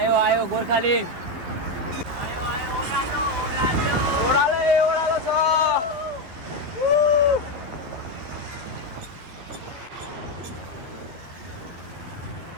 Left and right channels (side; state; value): left; late; 12 ms